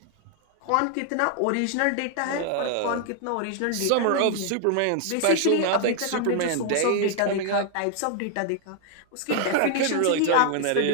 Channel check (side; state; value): both; different; correlation 0.00